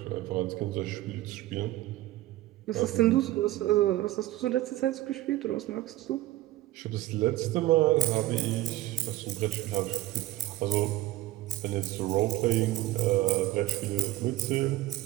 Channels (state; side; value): quieter; left; 16.3 dB